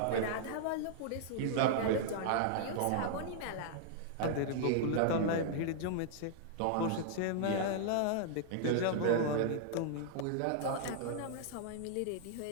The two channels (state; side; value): different; both; correlation -0.01